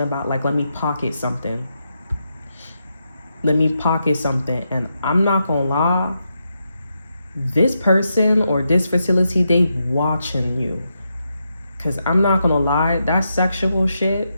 about like, let me pocket something. And I'm not gonna lie, this person or this facility, they watching you. Cause I'm not gonna lie, that sexual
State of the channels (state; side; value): inverted; both; correlation -0.84